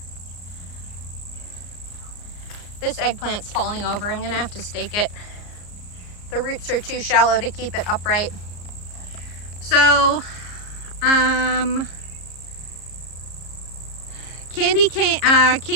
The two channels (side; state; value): right; late; 34 ms